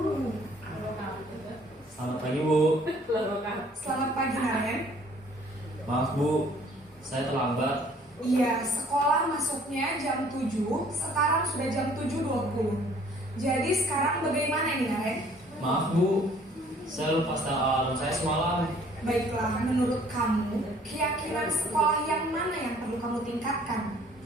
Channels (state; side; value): normal; both; correlation 0.57